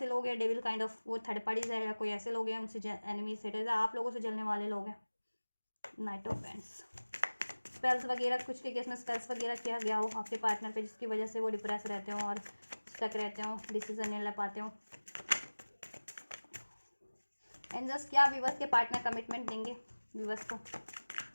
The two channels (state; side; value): inverted; both; correlation -1.00